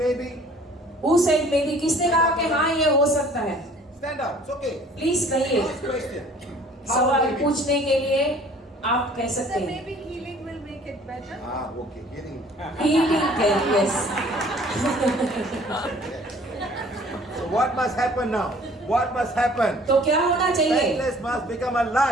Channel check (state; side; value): normal; both; correlation 0.53